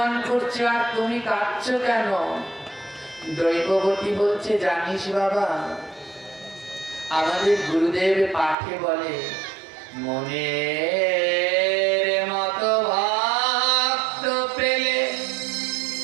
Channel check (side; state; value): left; drops out; at 8.6 s